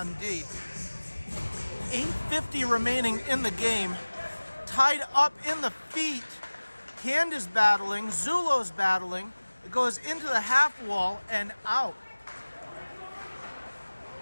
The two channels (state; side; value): inverted; both; correlation -1.00